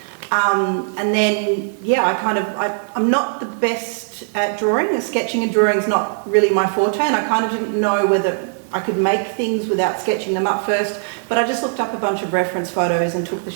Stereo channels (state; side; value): silent; left; digital silence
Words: And then, I'm not the best at drawing. Sketching and drawing is not really my forte, and I kind of didn't know whether I could make things without sketching them up first, but I just looked up a bunch of reference photos and took the